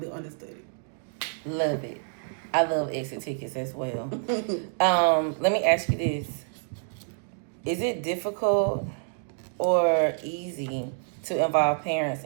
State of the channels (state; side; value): silent; left; digital silence